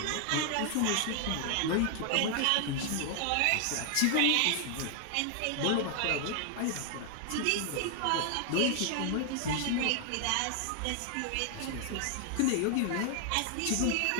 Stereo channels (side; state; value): both; different; correlation 0.00